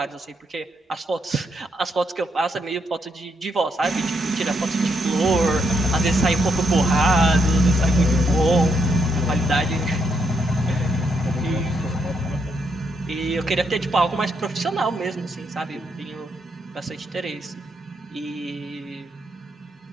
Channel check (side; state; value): both; normal; correlation 0.77